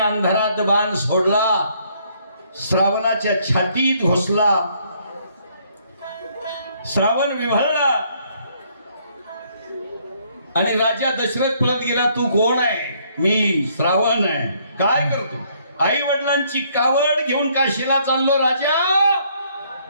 बाण सोडला, श्रावणाच्या छातीत घुसला. श्रावण विव्हळला आणि राजा दशरथ पळत गेला. तू कोण आहे? मी श्रावण आहे. काय करतो? आई वडिलांची कावड घेऊन काशीला चाललो राजा.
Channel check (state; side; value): inverted; both; correlation -0.67